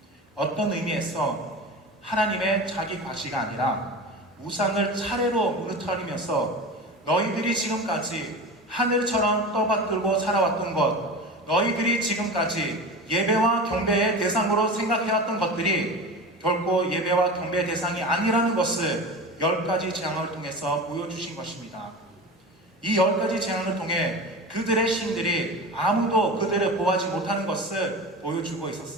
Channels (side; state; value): both; normal; correlation 0.30